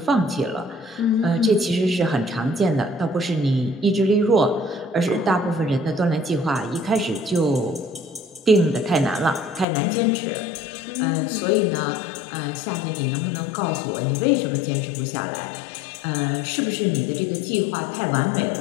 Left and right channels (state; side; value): drops out; right; at 9.7 s